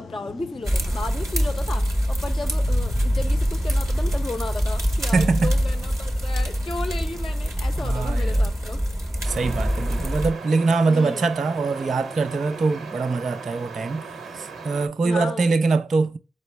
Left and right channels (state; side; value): normal; both; correlation 0.93